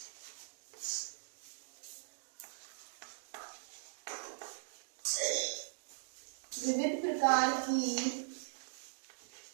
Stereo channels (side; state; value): left; silent; digital silence